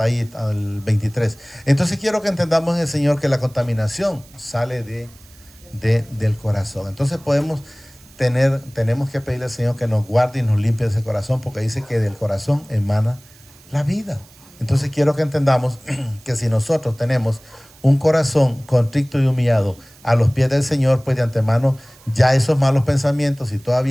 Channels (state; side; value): noise; right; hiss, 25 dB below the sound